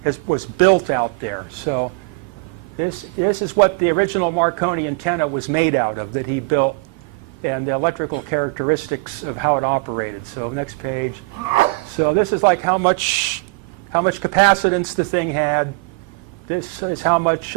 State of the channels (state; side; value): quieter; left; 28.8 dB